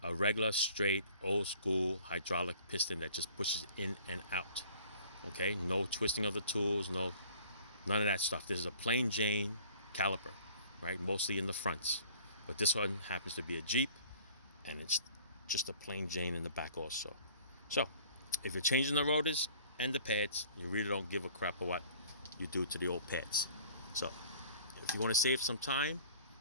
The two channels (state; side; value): inverted; both; correlation -0.51